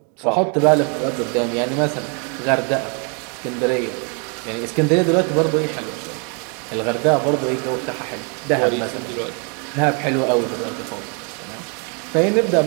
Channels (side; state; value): left; quieter; 36.8 dB